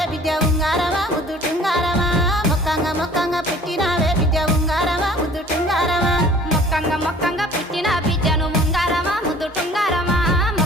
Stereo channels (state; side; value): normal; both; correlation 0.50